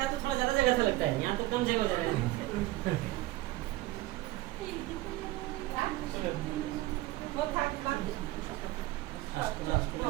तो थोड़ा ज्यादा जगह था लगता है, यहाँ तो कम जगह हो जाएगा।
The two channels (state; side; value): quieter; left; 17.5 dB